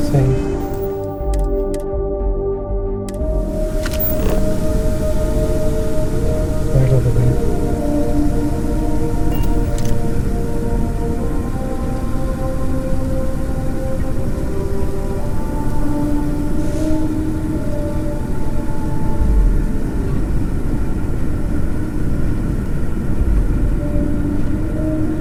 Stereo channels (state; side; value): identical; both; correlation 1.00